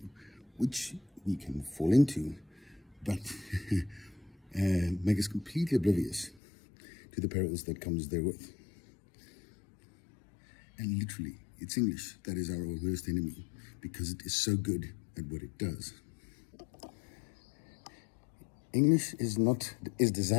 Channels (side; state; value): right; drops out; at 6.4 s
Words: which we can fall into, but make us completely oblivious to the perils that comes therewith. And literally, it's English that is our worst enemy, because it is so good at what it does. English is